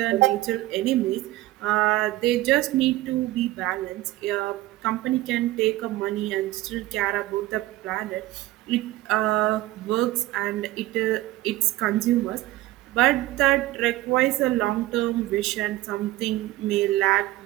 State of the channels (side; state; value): left; quieter; 17.1 dB